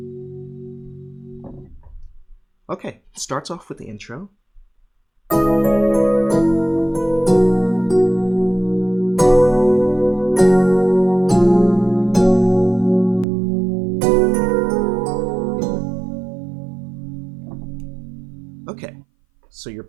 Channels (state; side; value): drops out; left; at 13.2 s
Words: Okay, starts off with the intro. Okay, so you're